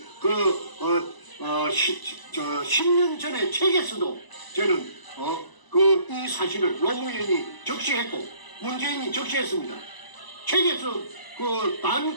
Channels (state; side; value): late; right; 1.0 ms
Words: 10년 전에 책에서도 저는 이 사실을 노무현이 적시했고 문재인이 적시했습니다. 책에서 단